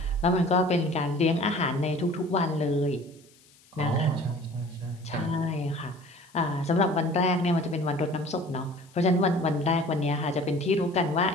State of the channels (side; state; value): left; noise; hiss, 29 dB below the sound